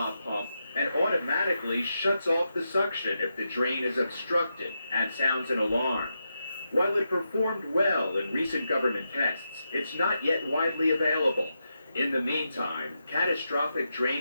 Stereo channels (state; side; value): inverted; both; correlation -0.86